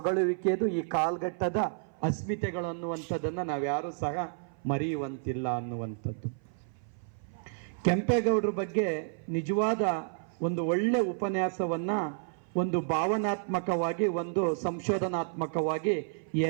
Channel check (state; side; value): silent; left; 55 dB below the other